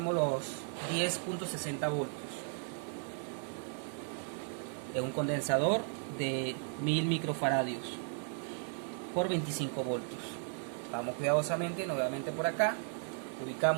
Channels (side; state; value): left; silent; 54 dB below the other